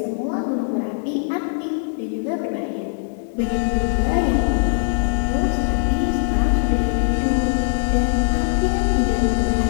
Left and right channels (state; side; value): silent; right; digital silence